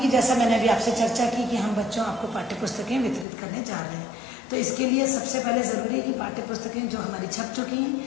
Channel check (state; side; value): drops out; right; at 3.2 s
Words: जैसा मैंने अभी आपसे चर्चा की कि हम बच्चों आपको पाठ्य पुस्तकें वितरित करने जा रहे हैं, तो इसके लिए सबसे पहले ज़रूरी है कि पाठ्य पुस्तकें जो हमारी छप चुकी